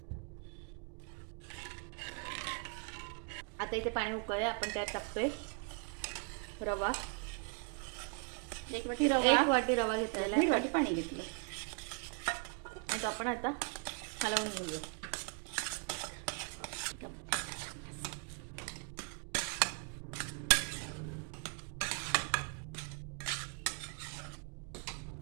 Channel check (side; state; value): left; quieter; 37.4 dB